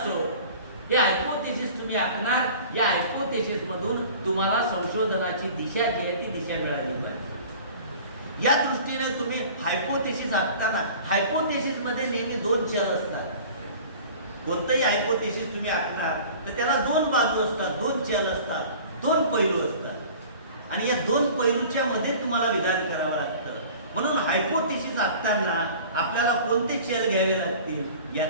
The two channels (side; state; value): both; inverted; correlation -0.43